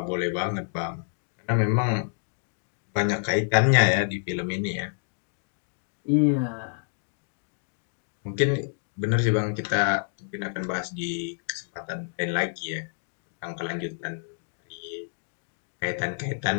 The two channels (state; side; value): silent; right; digital silence